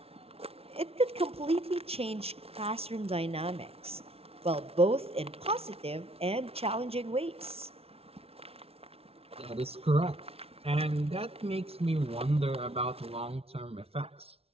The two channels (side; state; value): left; late; 0.29 ms